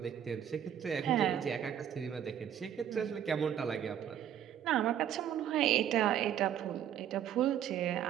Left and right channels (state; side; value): quieter; left; 9.9 dB